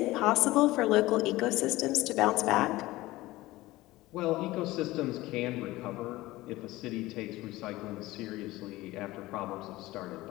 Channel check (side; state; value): right; quieter; 18.4 dB